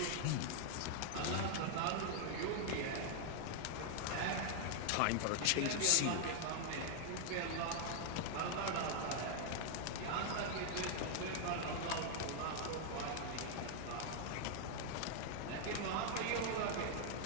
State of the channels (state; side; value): different; both; correlation 0.00